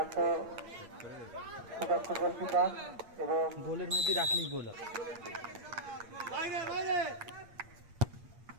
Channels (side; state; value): left; late; 8.6 ms